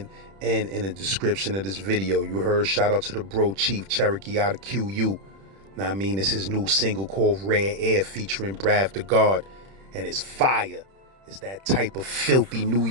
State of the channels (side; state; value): left; late; 31 ms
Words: and in the description of this video. You heard, shout out to the bro Chief Cherokee out of QU. Now I mean, it's his new single called Rare Air featuring Brav the God, and it's fire. It's that type of filthy New